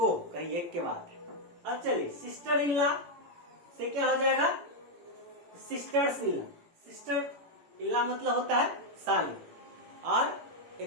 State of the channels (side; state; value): left; late; 17 ms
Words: कहीं एक के बाद। अब चलिए सिस्टर इन लॉ से क्या हो जाएगा? Sisters in law. Sister in law मतलब होता है साली, और